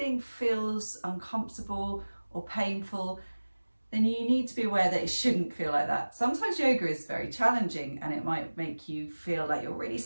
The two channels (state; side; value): inverted; both; correlation -1.00